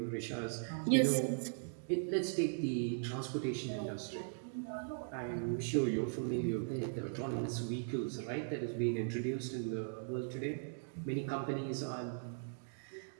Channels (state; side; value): silent; left; digital silence